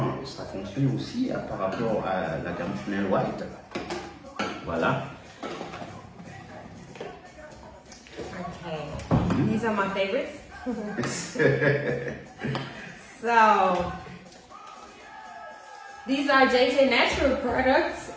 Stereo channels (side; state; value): both; identical; correlation 1.00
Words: ça fonctionne aussi par rapport à la gamme Chanel White. Voilà. Okay, these are my favorites. So, these are JJ Natural products,